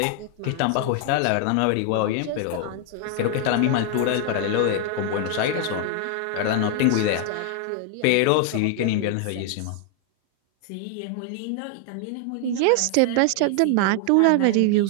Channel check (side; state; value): both; different; correlation 0.00